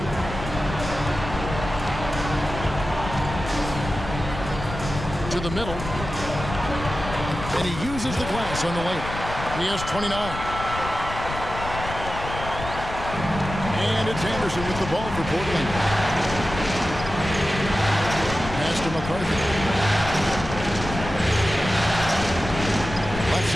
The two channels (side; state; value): left; noise; rumble, 8 dB below the sound